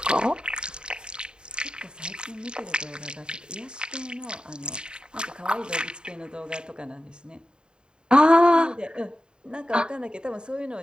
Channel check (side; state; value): left; late; 0.049 ms